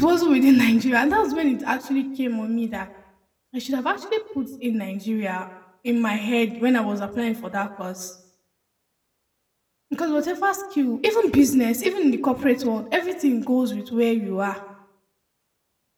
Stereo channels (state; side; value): identical; both; correlation 1.00